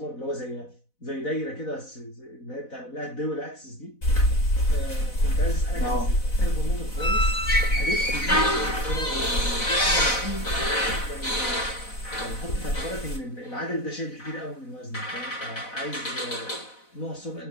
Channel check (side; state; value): right; late; 4.0 ms